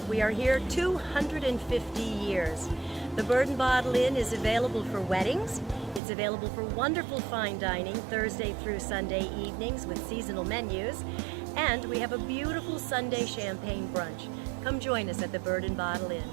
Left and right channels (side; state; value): left; drops out; at 6.0 s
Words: we are here 250 years. The Bird and Bottle Inn is available for weddings. It's available for wonderful fine dining Thursday through Sunday evenings with seasonal menus. And we have a beautiful Sunday champagne brunch. Come join us at the Bird and Bottle